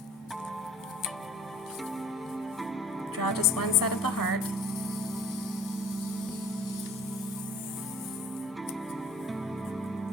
draw just one side of the heart,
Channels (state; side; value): normal; both; correlation 0.49